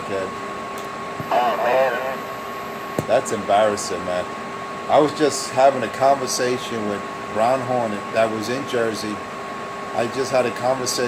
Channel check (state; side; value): identical; both; correlation 1.00